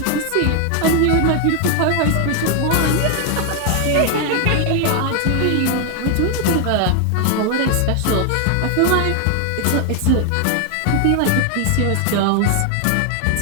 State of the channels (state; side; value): different; both; correlation 0.01